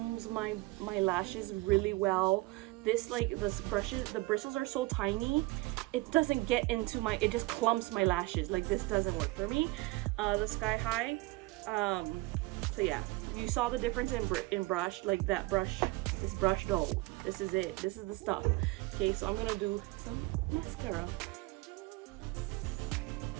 my lashes really well. This, like, the bristles are so tiny, it doesn't get into it just clumps my lashes. Like, this doesn't work for me. The Sky High, so yeah, you saw the difference in brush. Like, that brush, this brush dough, this is it, this is the stuff. Okay, so I'm gonna do some mascara.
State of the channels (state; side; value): quieter; left; 21.9 dB